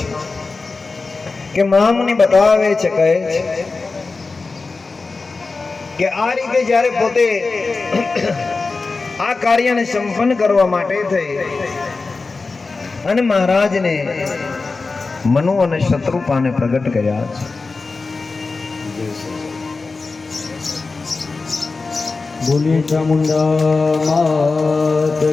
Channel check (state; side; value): quieter; right; 4.0 dB